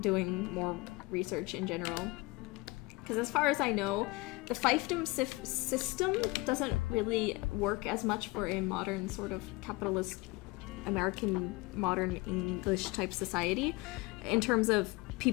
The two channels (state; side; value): quieter; right; 23.6 dB